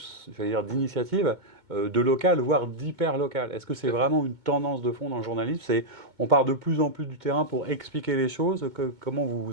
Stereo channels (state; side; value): late; left; 2.2 ms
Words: j'allais dire, d'initiatives de local, voire d'hyper local. Est-ce que c'est vraiment une tendance de fond dans le journalisme? On part de plus en plus du terrain pour expliquer les choses. Comment